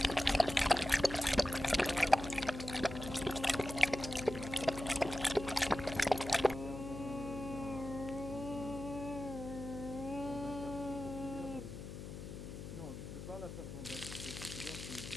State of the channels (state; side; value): noise; left; hum, 9 dB below the sound